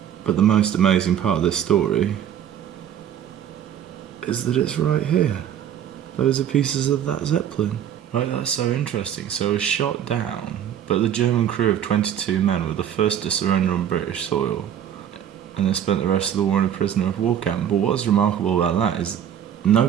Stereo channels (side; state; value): left; quieter; 9.7 dB